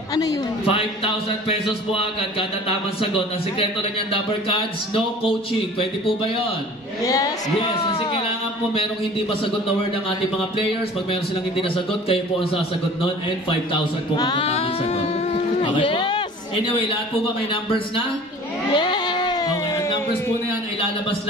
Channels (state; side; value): normal; both; correlation 0.45